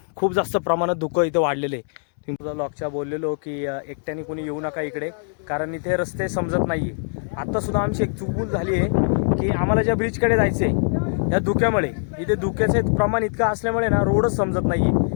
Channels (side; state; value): right; silent; digital silence